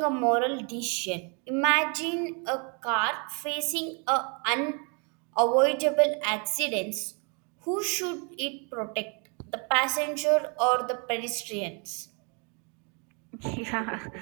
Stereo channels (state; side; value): quieter; left; 35.7 dB